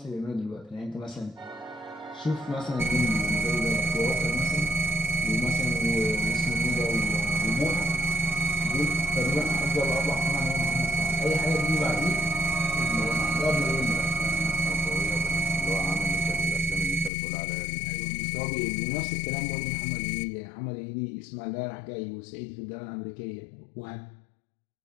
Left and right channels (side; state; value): right; drops out; at 17.1 s